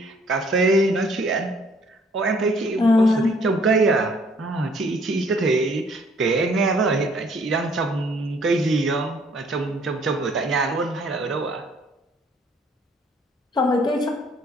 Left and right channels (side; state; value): both; normal; correlation 0.61